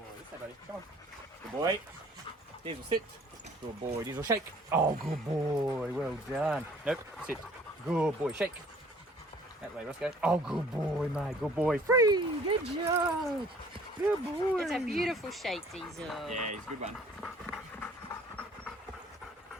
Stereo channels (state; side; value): normal; both; correlation 0.55